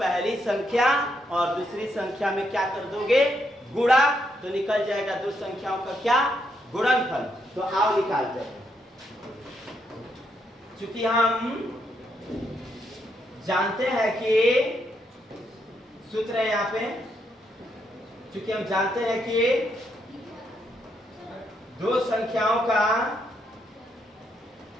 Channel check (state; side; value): normal; both; correlation 0.77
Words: संख्या और दूसरी संख्या में क्या कर दोगे? गुणा, तो निकल जाएगा दो संख्याओं का क्या? गुणनफल। तो आओ निकालते हैं। चूंकि हम जानते हैं कि सूत्र है यहाँ पे, चूंकि हम जानते हैं कि दो संख्याओं का